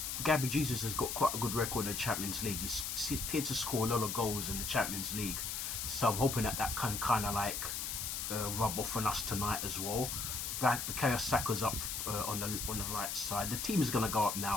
Gabby Jesus has got quite a good record in the Champions League. He tends to score a lot of goals in the Champions League. So I'm hoping that can kind of rub off on us tonight as well. Bukayo Saka's up on the right side. The team is going to go up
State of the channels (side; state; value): left; noise; hiss, 3 dB below the sound